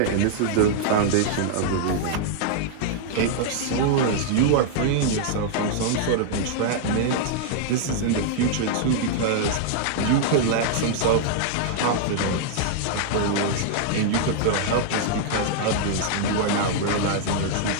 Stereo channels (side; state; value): both; different; correlation -0.01